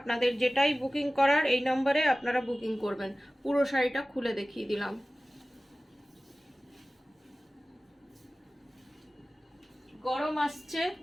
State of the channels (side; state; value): both; normal; correlation 0.97